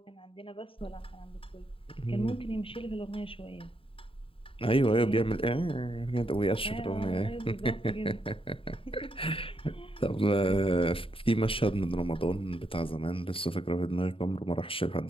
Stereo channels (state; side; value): late; right; 0.26 ms